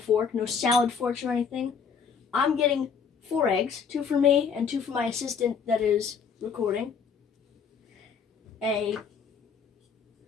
no salad forks or anything. I'm getting 4 eggs, 2 for me and 2 for my assistant that is recording. A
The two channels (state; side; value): quieter; right; 6.3 dB